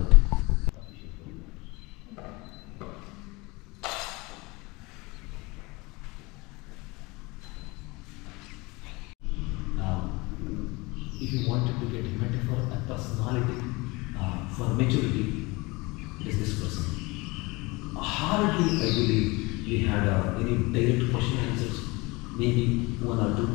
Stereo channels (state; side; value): quieter; right; 24.4 dB